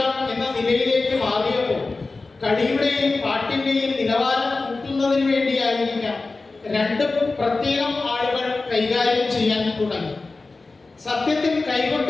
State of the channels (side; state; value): right; quieter; 3.6 dB